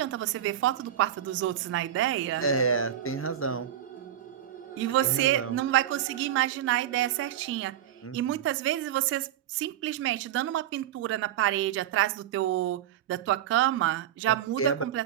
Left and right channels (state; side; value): quieter; left; 10.9 dB